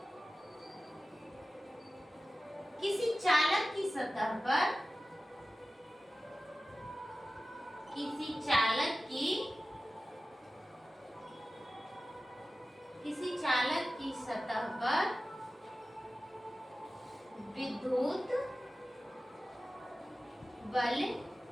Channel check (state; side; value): normal; both; correlation 0.96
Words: किसी चालक की सतह पर, किसी चालक की सतह पर विद्युत बल